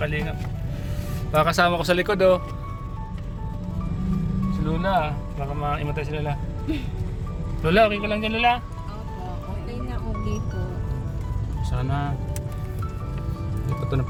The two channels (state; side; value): identical; both; correlation 1.00